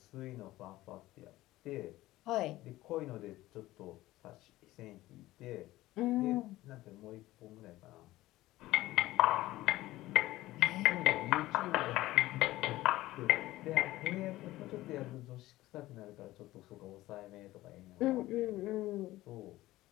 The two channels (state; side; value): quieter; right; 16.9 dB